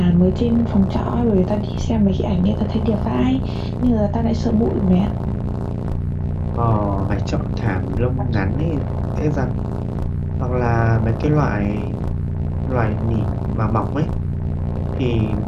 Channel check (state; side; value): identical; both; correlation 1.00